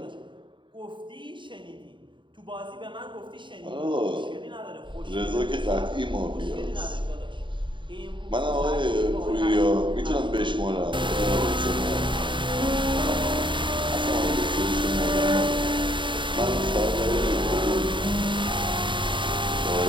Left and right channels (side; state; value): left; late; 0.23 ms